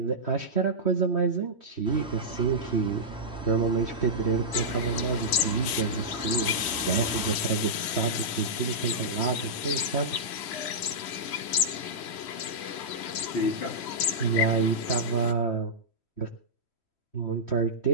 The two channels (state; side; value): late; right; 3.1 ms